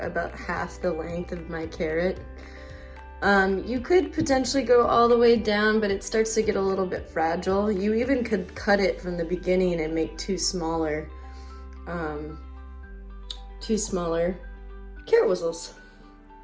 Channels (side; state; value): both; identical; correlation 1.00